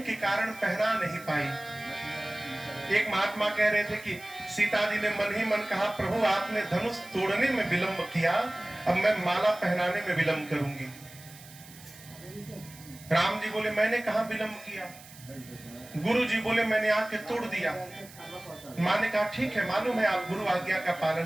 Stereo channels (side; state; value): right; noise; hiss, 19 dB below the sound